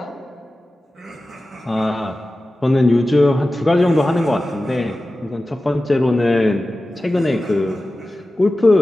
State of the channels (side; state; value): both; normal; correlation 0.95